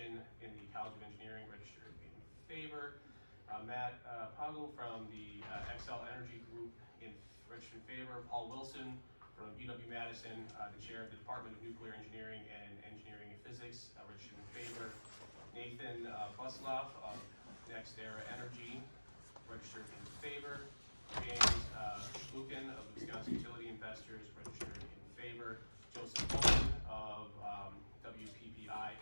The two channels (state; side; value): inverted; both; correlation -1.00